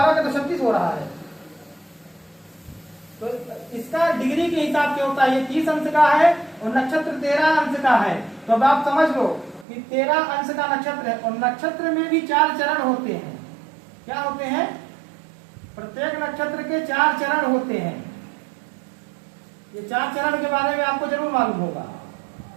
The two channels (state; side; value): drops out; left; at 9.7 s